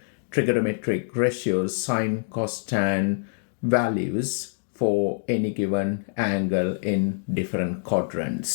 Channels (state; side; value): silent; right; digital silence